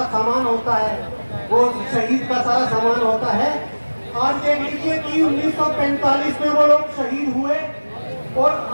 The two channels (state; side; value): inverted; both; correlation -1.00